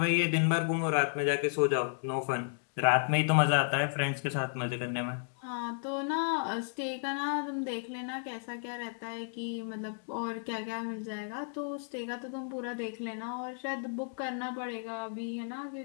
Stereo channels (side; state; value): right; silent; digital silence